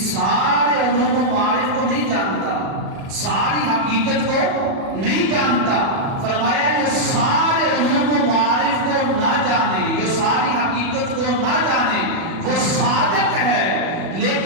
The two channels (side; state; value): left; late; 37 ms